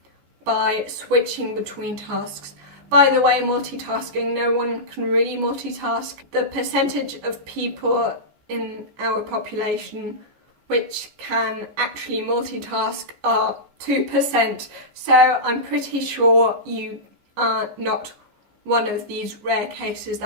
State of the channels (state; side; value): late; left; 14 ms